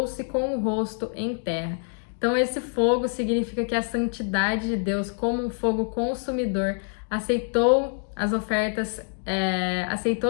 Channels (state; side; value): silent; right; 55 dB below the other